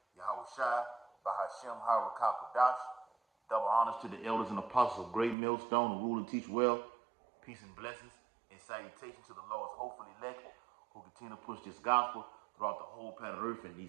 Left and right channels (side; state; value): left; drops out; at 5.4 s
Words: Yahweh Shai, Bahashem, Harakah Kodash. Double honors to the elders and apostles of Great Millstone who rule and teach well. Peace and blessings and salutation to the Lord's hopeful elect who continue to push this gospel throughout the whole planet Earth in